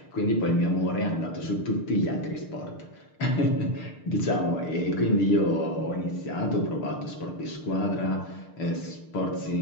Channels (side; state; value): right; late; 6.6 ms